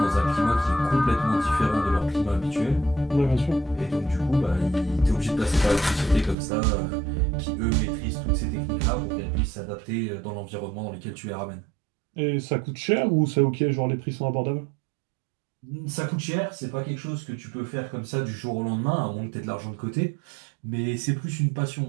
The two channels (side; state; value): left; drops out; at 6.4 s